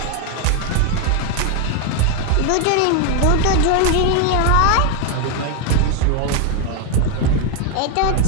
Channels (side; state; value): both; different; correlation 0.01